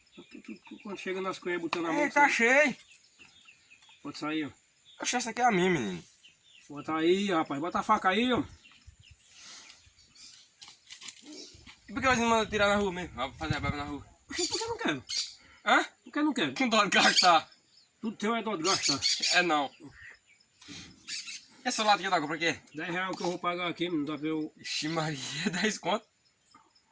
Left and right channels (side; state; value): both; identical; correlation 1.00